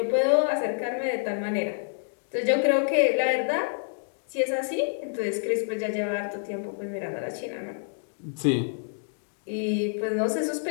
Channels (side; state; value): right; silent; digital silence